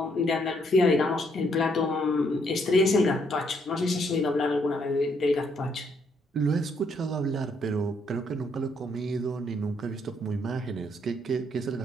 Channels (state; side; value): normal; both; correlation 0.71